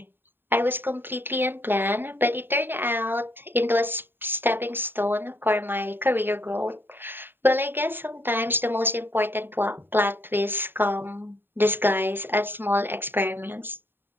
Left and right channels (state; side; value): late; left; 0.097 ms